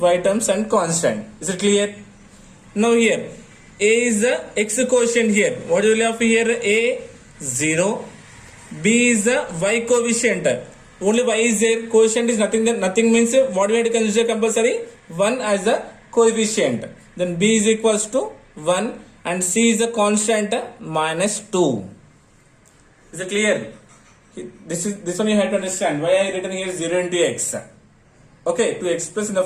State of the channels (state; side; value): identical; both; correlation 1.00